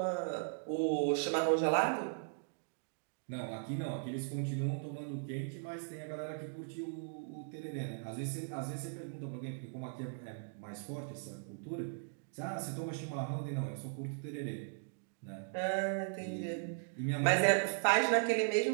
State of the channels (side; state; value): left; silent; digital silence